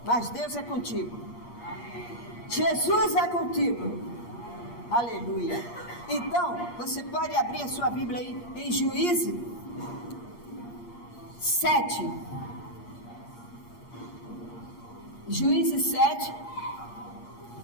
mas Deus é contigo. Jesus é contigo. Aleluia. Então, você pode abrir a sua Bíblia aí em Juízes 7. Juízes 7.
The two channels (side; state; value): right; late; 8.5 ms